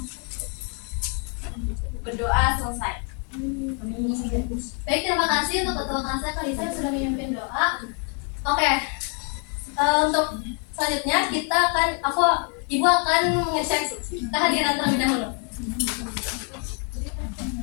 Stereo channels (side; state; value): right; quieter; 39.5 dB